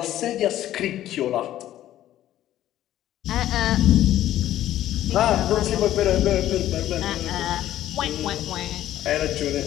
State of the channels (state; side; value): quieter; right; 13.0 dB